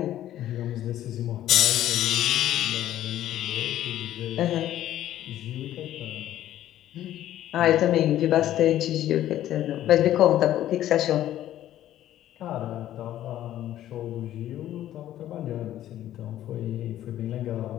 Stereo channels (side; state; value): right; quieter; 12.7 dB